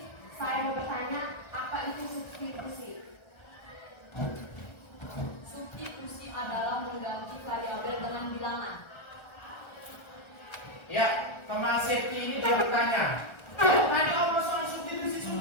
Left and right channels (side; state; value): right; late; 1.3 ms